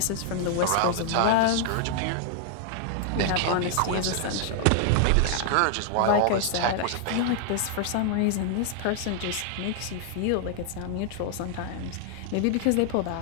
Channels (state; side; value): different; both; correlation 0.00